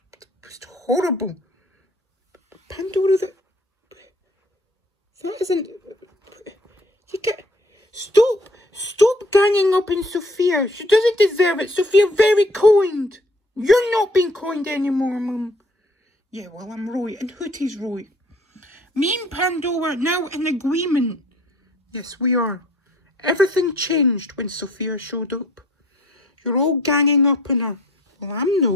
was horrible. Pandora, that isn't... You get... Stop ganging up on Sophia. She doesn't deserve it. Sophia very kind. You're not being kind anymore, Mum. Yeah, well, I'm right, and Hootie's right. Me and Pandora are now in agreement. Yes, we are. Everything changed when Sophia showed up. You're all ganging up on her. Well, I'm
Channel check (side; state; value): both; normal; correlation 0.56